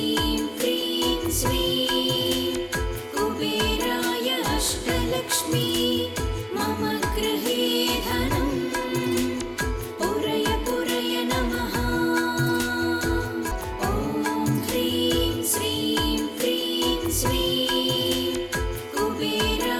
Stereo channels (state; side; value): identical; both; correlation 1.00